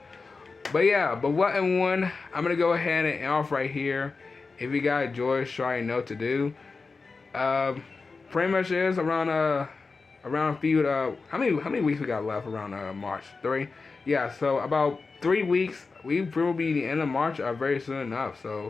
But yeah, but what and one, I'm going to go ahead and end off right here. If you guys enjoyed, sure you know what to do. Pretty much is around a few, how many weeks we got left around March? 3? Yeah, so about 3 weeks. We will be the end of March very soon enough.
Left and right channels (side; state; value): right; quieter; 4.2 dB